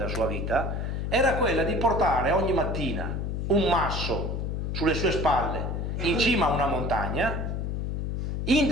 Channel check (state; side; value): noise; left; hum, 2 dB below the sound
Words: sua vita, era quella di portare ogni mattina un masso sulle sue spalle in cima a una montagna,